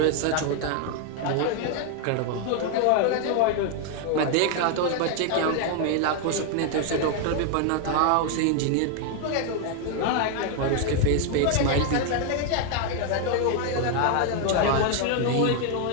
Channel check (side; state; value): both; different; correlation 0.00